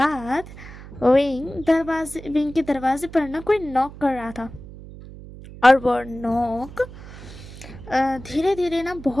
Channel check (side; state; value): right; noise; hum, 15 dB below the sound